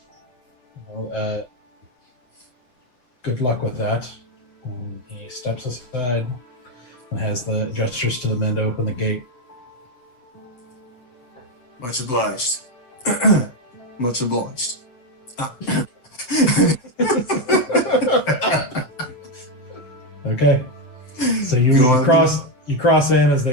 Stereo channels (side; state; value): right; late; 8.0 ms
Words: Well, good luck with that. And he steps aside and has the gestures to the men to open the gate. Much obliged. Much obliged. Okay. So you cross in as